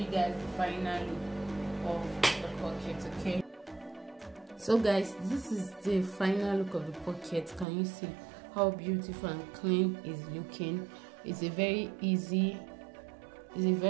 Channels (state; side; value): drops out; left; at 7.7 s